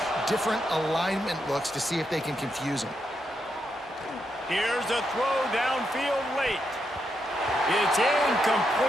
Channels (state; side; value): normal; both; correlation 0.82